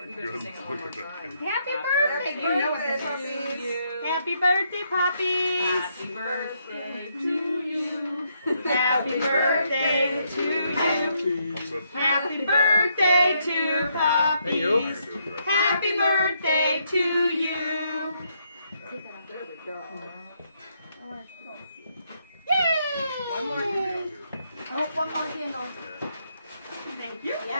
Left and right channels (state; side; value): inverted; both; correlation -0.75